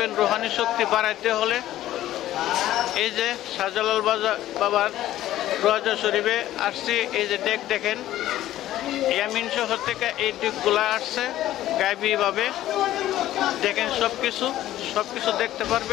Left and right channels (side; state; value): right; quieter; 13.8 dB